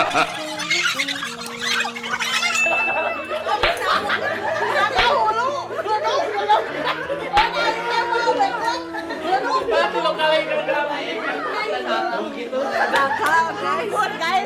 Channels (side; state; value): both; identical; correlation 1.00